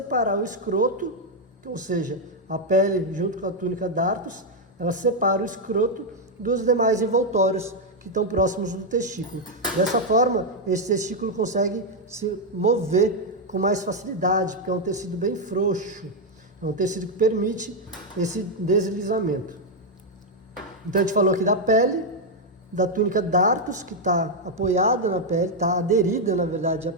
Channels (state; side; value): normal; both; correlation 0.00